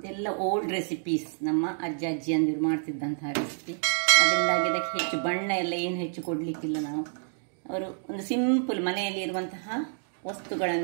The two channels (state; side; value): silent; left; digital silence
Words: ಓಲ್ಡ್ ರೆಸಿಪೀಸ್, ನಮ್ಮ ಅಜ್ಜ ಅಜ್ಜಿಯಂದಿರು ಮಾಡ್ತಿದ್ದಂತಹ ರೆಸಿಪಿ. ಅದರಿಂದಾಗಿ ಇದಕ್ಕೆ ಹೆಚ್ಚು ಬಣ್ಣ ಎಲ್ಲ ಏನು ಹೆಚ್ಚು ಕೊಡಲಿಕ್ಕಿಲ್ಲ ನಾವು. ಅವರು ಒಂದು ಸಿಂಪಲ್ ಮನೆಯಲ್ಲಿ ಇರುವಂತಹ